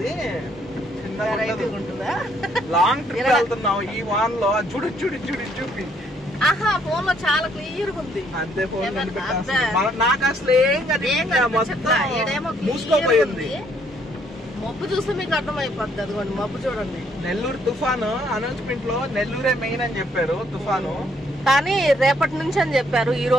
లాంగ్ ట్రిప్ వెళ్తున్నావు ఈ వాన్ లో. చూపి ఆహా, ఫోన్ లో చాలా క్లియర్ గా ఉంది. అంతే, ఫోన్ నాకు అసలు ఏం మూసుకోపోయింది. మబ్బు చూస్తే మీకు అర్థమైపోద్ది. అదిగోండి మబ్బు చూడండి. నెల్లూరు తుఫాను అనౌన్స్మెంట్ లో నెల్లూరే మెయిన్ అని చెప్పారు తుఫాను, కానీ రేపటి నుంచి అని చెప్పారు. ఈ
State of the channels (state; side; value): normal; both; correlation 0.68